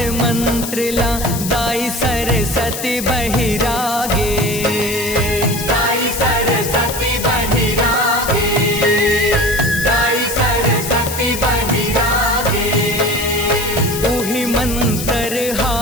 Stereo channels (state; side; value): noise; left; hiss, 7 dB below the sound